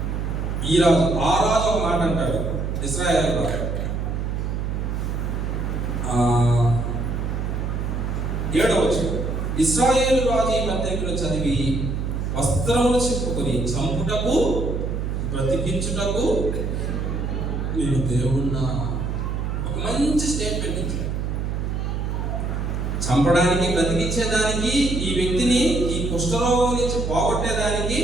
ఈ రాజు ఆ రాజు ఒక మాట అంటాడు, ఇశ్రాయేలు రాజు 7వ వచనం, ఇశ్రాయేలు రాజు ఈ పత్రికలు చదివి వస్త్రములు చెప్పుకొని చంపుటకు బ్రతికించుటకు నేను దేవుణ్ణా. ఒక మంచి స్టేట్మెంట్ ఇచ్చాడు. చంపడానికి, బ్రతికించేదానికి, ఈ వ్యక్తిని ఈ కుష్ఠరోగం నుంచి పోగొట్టేదానికి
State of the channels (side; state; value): right; noise; hum, 2 dB below the sound